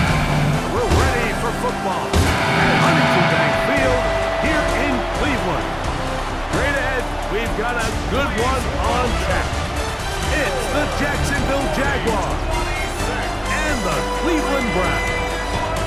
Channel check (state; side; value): identical; both; correlation 1.00